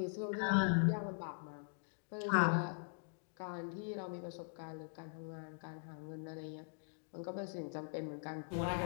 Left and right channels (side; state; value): right; silent; digital silence